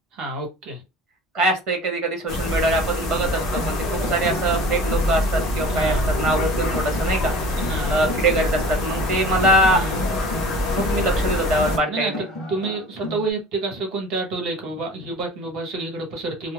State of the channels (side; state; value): both; normal; correlation 0.42